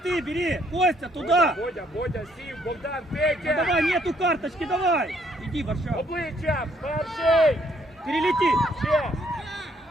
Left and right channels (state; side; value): normal; both; correlation 0.68